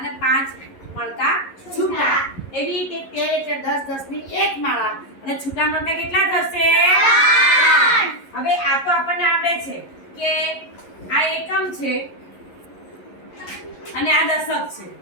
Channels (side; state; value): right; late; 11 ms